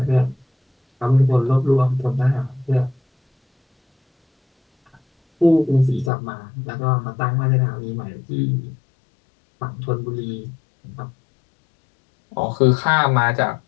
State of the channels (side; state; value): right; drops out; at 6.1 s